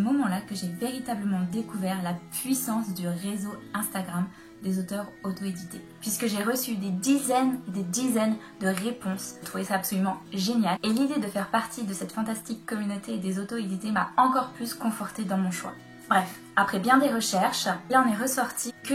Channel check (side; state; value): both; identical; correlation 1.00